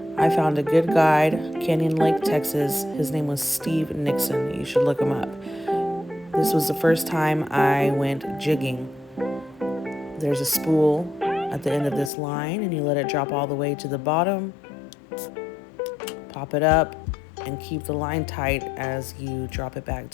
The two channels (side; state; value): right; drops out; at 12.1 s